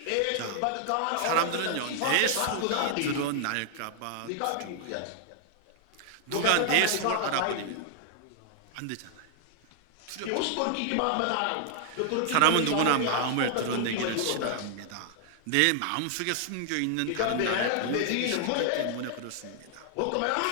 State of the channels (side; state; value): both; different; correlation 0.00